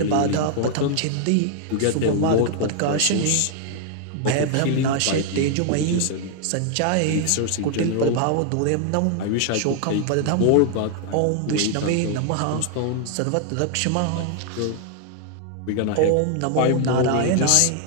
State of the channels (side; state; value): both; different; correlation 0.00